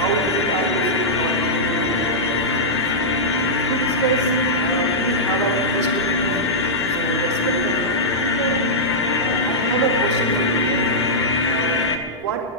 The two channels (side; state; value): both; normal; correlation -0.09